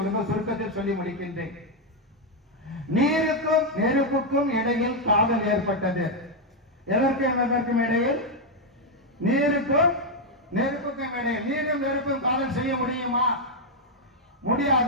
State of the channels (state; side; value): normal; both; correlation 0.01